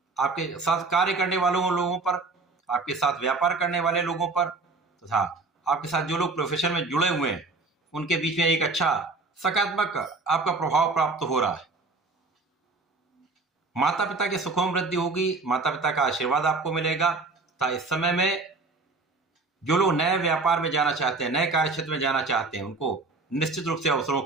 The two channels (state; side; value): quieter; left; 3.7 dB